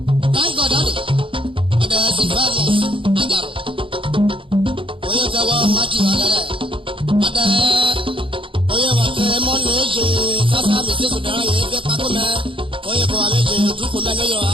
Thank God daddy. Ọ̀dà Sylvanus Ajaro. Oyè kẹwọ́ Matthew Agẹrẹ. Ọ̀dà oyè wàkẹ́ mọ́nà èjè sásá mi sí sùdàrà yẹn fẹ́ pákó mẹ́. Oyè kẹwàá méje dúkú mẹ́ níyọ̀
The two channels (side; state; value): left; late; 0.25 ms